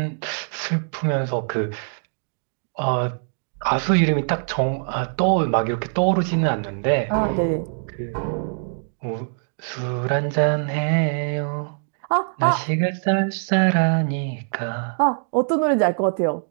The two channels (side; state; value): left; silent; digital silence